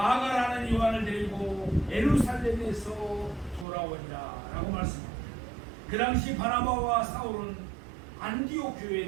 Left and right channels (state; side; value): drops out; left; at 3.7 s